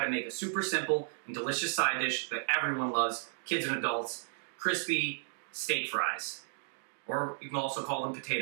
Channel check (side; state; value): left; silent; digital silence